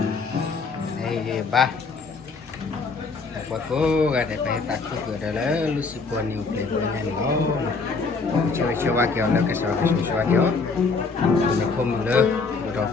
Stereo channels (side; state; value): right; quieter; 4.4 dB